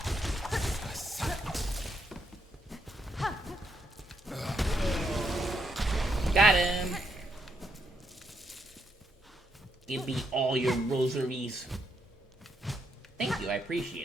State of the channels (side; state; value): both; normal; correlation 0.78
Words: Got him. Give me all your rosaries. Thank you, I